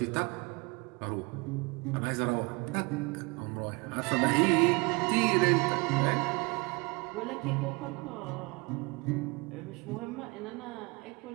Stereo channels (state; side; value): quieter; left; 27.6 dB